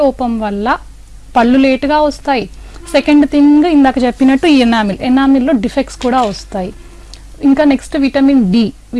లోపం వల్ల పళ్ళు లేటుగా వస్తాయి. సెకండ్ థింగ్, ఇందాక చెప్పినట్టు ఈ ఎనామిల్లో డిఫెక్ట్స్ కూడా వస్తాయి. ఇంకా next vitamin D.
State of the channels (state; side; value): identical; both; correlation 1.00